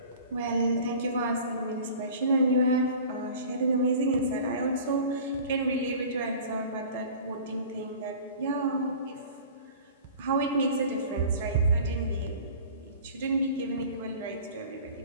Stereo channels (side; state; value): both; inverted; correlation -0.42